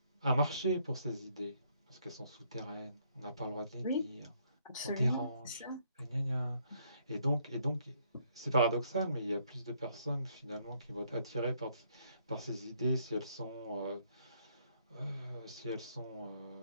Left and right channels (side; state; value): both; inverted; correlation -0.69